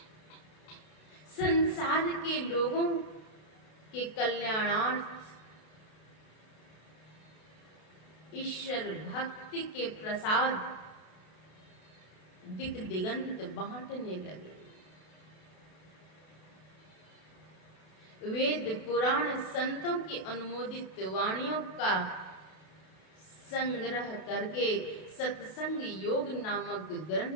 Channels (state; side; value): late; right; 32 ms